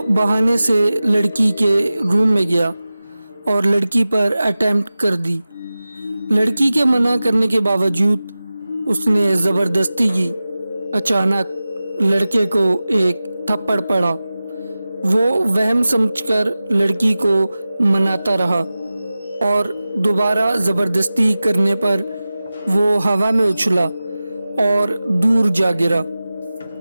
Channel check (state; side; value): inverted; both; correlation -0.96